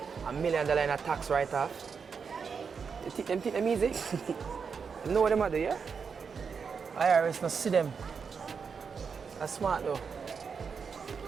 $1 million in a tax write-off, them think them easy. You know what them do, yeah? IRS not see them. That's smart though.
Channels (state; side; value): quieter; left; 5.9 dB